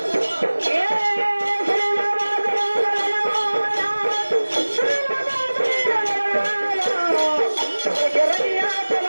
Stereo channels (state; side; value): inverted; both; correlation -1.00